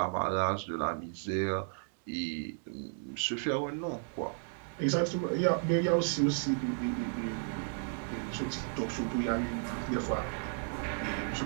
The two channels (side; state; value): left; silent; 55 dB below the other